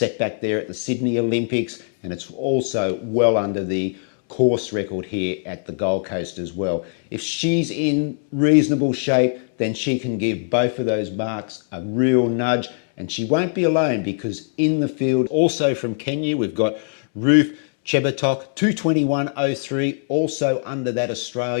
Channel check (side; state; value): right; silent; 65 dB below the other